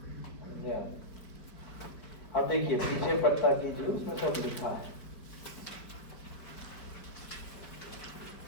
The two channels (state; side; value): late; right; 4.8 ms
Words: समझे आप? अब देखिए पीछे पत्ता कीजिए, उसमें सब लिखा है।